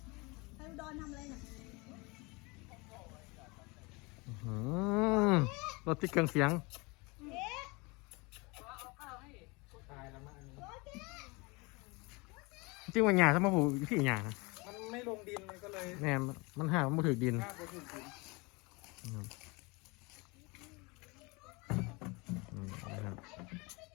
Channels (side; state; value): right; quieter; 26.8 dB